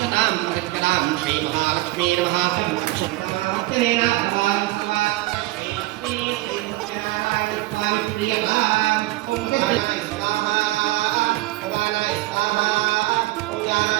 परिष्करां श्रीमहालक्ष्मी नमः सर्वक्षणेन भवान्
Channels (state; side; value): quieter; left; 19.0 dB